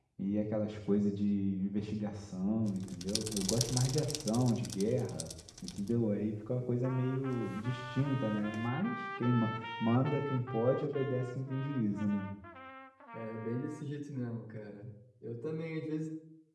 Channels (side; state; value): both; identical; correlation 1.00